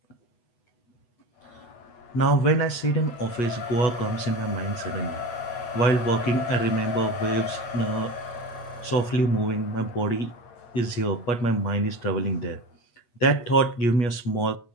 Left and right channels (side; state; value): right; late; 8.3 ms